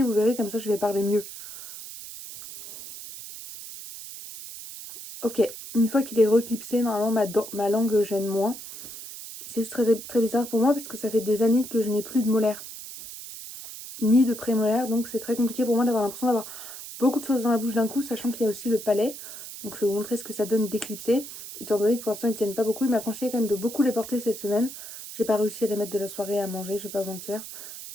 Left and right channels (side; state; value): right; noise; hiss, 12 dB below the sound